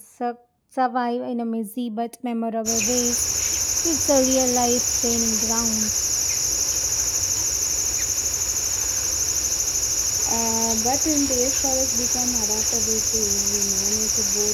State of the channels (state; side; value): identical; both; correlation 1.00